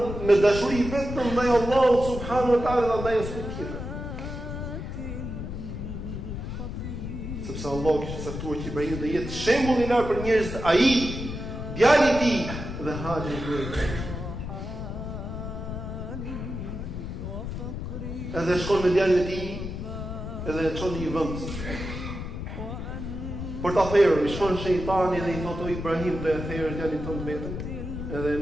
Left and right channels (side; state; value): left; noise; rumble, 6 dB below the sound